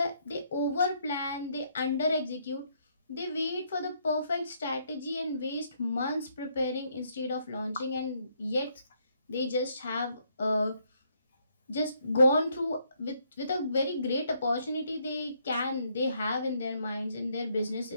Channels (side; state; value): both; inverted; correlation -0.71